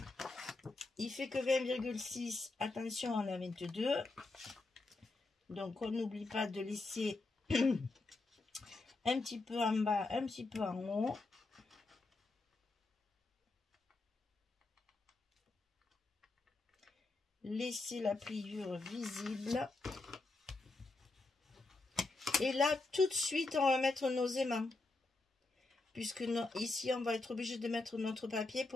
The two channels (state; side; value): quieter; right; 3.3 dB